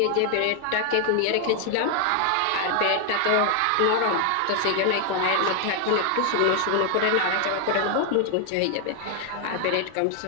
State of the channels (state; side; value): different; both; correlation 0.00